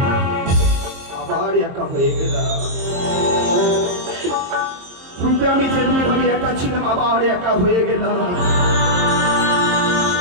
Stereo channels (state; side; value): late; left; 22 ms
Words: আবার একা হয়ে গেলাম। পূর্বে আমি যেমনি ভাবে একা ছিলাম, আবার একা হয়ে গেলাম।